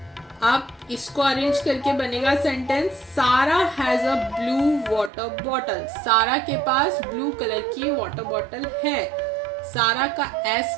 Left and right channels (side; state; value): left; drops out; at 5.1 s